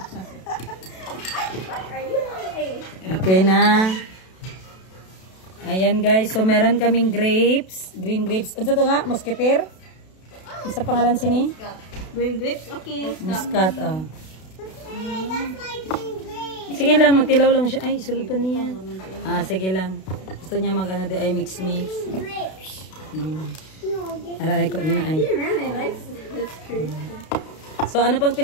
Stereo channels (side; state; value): right; late; 32 ms